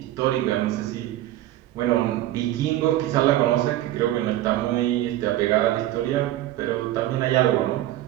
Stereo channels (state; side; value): quieter; left; 14.5 dB